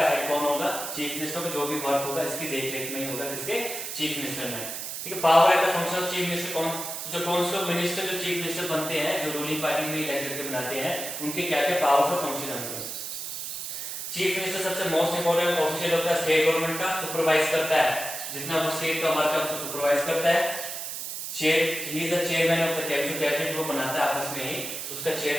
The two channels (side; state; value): right; noise; hiss, 6 dB below the sound